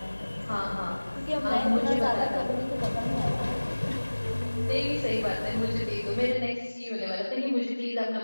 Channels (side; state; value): both; inverted; correlation -1.00